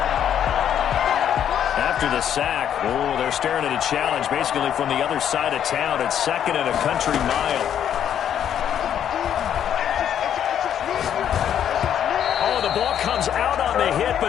After the sack, they're staring at a challenge basically from the other side of town. It's second and a country mile. The ball comes out on the hit,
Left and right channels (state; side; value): quieter; right; 9.5 dB